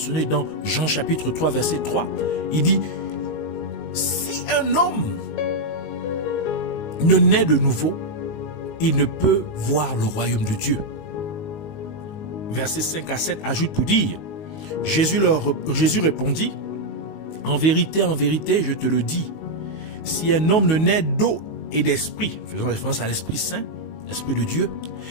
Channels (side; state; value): right; late; 19 ms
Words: dans Jean chapitre 3 verset 3. Il dit: si un homme ne naît de nouveau, il ne peut voir le royaume de Dieu. Versets 5 à 7 ajoute pour dire: Jésus répondit: en vérité, je te le dis, si un homme ne naît d'eau et d'esprit, faisant référence à l'Esprit Saint, l'Esprit de Dieu,